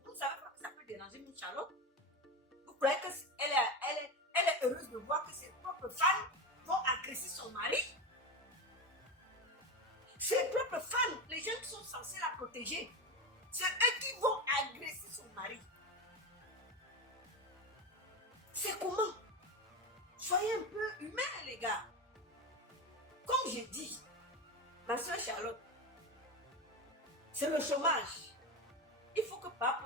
vous ne savez pas que ça peut déranger une Charlotte. Vous croyez qu'elle est heureuse de voir que ses propres fans vont agresser son mari? Ses propres fans, les gens qui sont censés la protéger, c'est eux qui vont agresser son mari. C'est comment? Soyez un peu humains, les gars. Comme je dis, ma soeur Charlotte, c'est le chômage. Il faut que Papa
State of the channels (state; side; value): normal; both; correlation 0.20